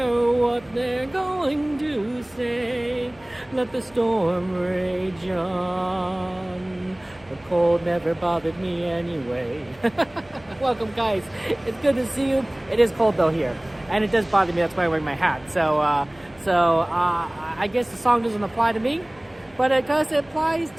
what they're going to say. Let the storm rage on. The cold never bothered me anyway. Welcome, guys. It's good to see you. It is cold though here, and it does bother me. That's why I wear my hat. So I guess the song doesn't apply to me, but it applies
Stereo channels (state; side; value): noise; left; hum, 27 dB below the sound